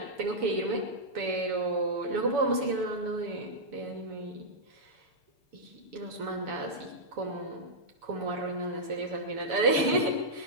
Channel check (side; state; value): left; late; 7.0 ms